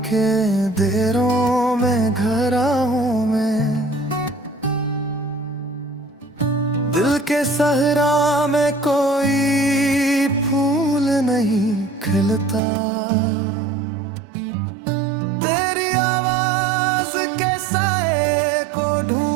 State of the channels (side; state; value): left; drops out; at 12.6 s